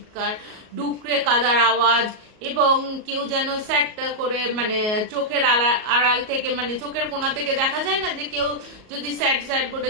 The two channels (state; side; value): late; left; 37 ms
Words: ডুকরে কাদার আওয়াজ, এবং কেউ যেন স্যাট করে, মানে চোখের আড়াল থেকে, মানে চোখের কোণা থেকে দেখা যায় না যে কেউ যদি স্যাট স্যাট করে